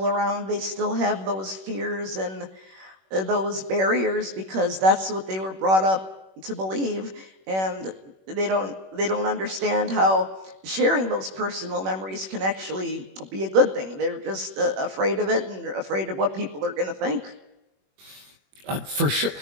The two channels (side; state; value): left; late; 21 ms